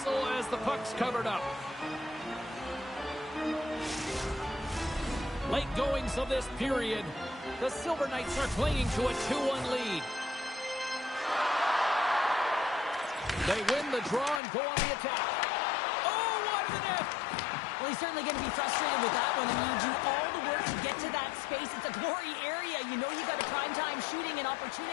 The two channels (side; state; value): right; drops out; at 14.4 s